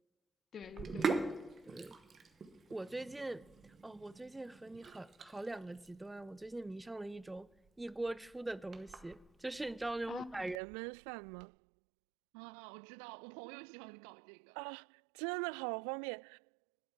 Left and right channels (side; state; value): left; drops out; at 10.6 s